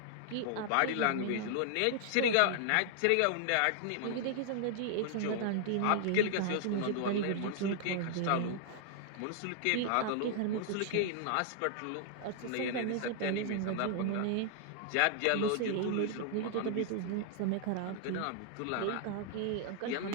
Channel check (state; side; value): different; both; correlation -0.01